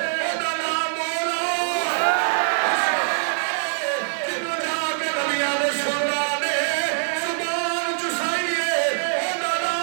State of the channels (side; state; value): left; silent; digital silence